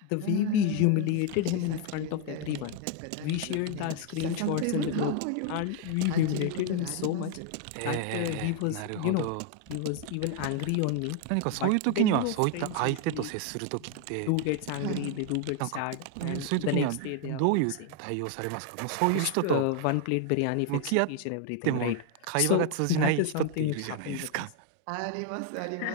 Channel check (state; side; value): different; both; correlation 0.01